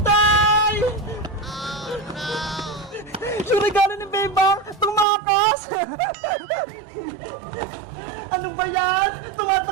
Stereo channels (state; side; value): drops out; left; at 5.1 s